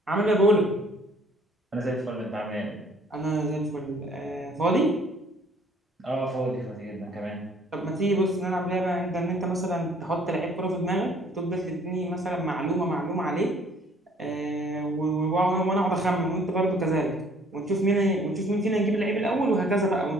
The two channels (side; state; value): both; normal; correlation 0.58